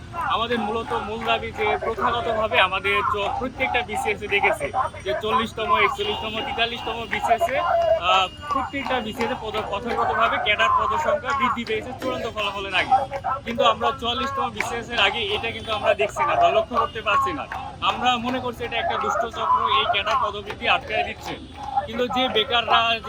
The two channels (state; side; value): identical; both; correlation 1.00